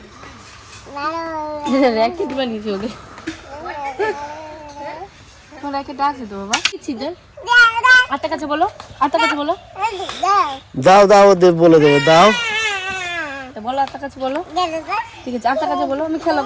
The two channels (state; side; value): identical; both; correlation 1.00